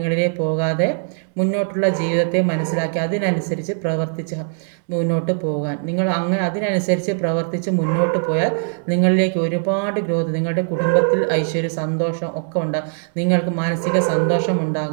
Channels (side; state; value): left; silent; digital silence